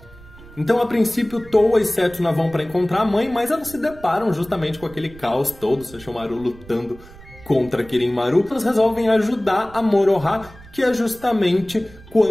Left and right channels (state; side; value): noise; right; rumble, 21 dB below the sound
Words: Então, a princípio, Towa e Setsuna vão para encontrar a mãe, mas elas se deparam justamente com aquele caos todo, Sesshomaru lutando contra Kirin-Maru. Elas resolvem ajudar a Moroha, que é justamente